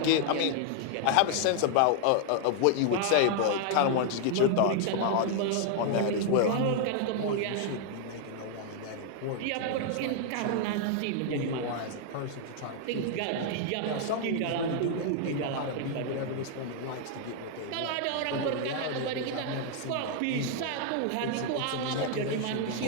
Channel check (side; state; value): both; different; correlation 0.00